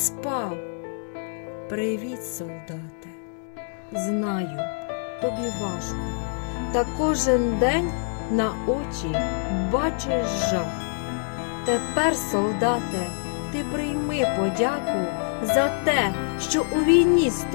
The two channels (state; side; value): silent; right; 61 dB below the other